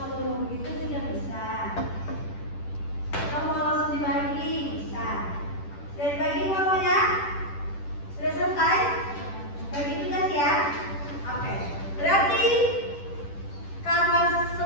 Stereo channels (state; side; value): late; right; 10 ms